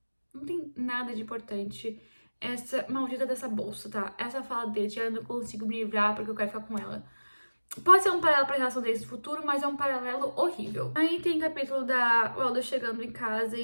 Não tem nada de importante essa maldita dessa bolsa, tá? Essa fala dele, eu não consigo me livrar porque eu quero ficar com ela. Pode ser um paralelo pra relação deles no futuro, mas é um paralelo horrível. Aí tem capítulo da Waldo chegando em casa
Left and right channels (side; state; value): both; inverted; correlation -1.00